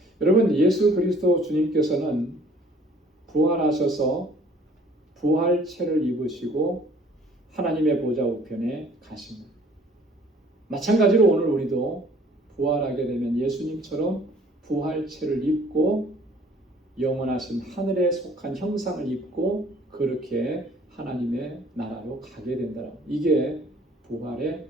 여러분, 예수 그리스도 주님께서는 부활하셔서 부활체를 입으시고 하나님의 보좌 우편에 가십니다. 마찬가지로 오늘 우리도 부활하게 되면 예수님처럼 부활체를 입고 영원하신 하늘에 속한 형상을 입고 그렇게 하나님의 나라로 가게 된다. 이게 부활의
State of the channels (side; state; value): both; normal; correlation 0.56